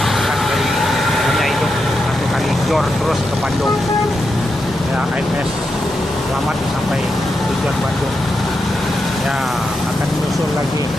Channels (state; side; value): normal; both; correlation 0.86